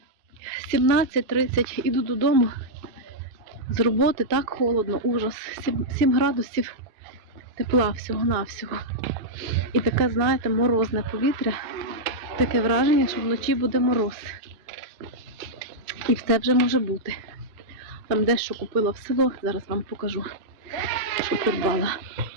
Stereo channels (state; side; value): late; left; 2.6 ms